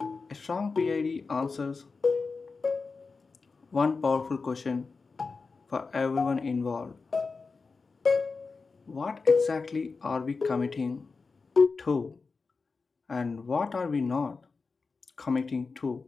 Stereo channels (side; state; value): right; quieter; 4.4 dB